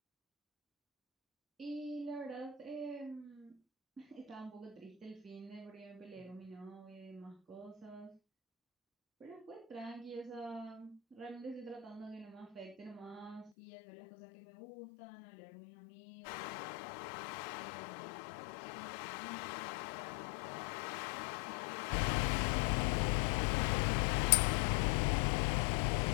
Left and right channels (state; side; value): drops out; right; at 13.5 s